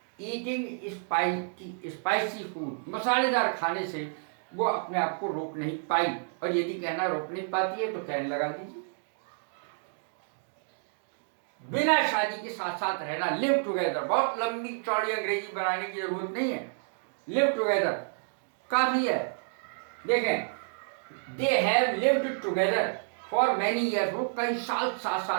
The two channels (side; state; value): left; silent; digital silence